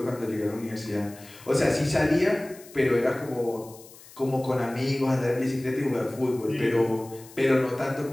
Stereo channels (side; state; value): left; noise; hiss, 21 dB below the sound